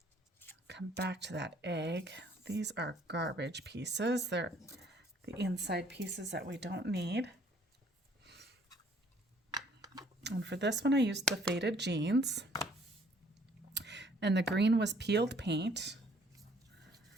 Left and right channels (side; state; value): both; normal; correlation 0.61